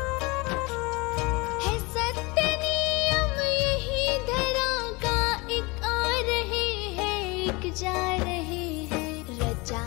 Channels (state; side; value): quieter; right; 25.6 dB